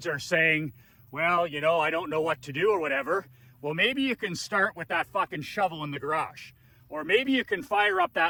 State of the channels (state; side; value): identical; both; correlation 1.00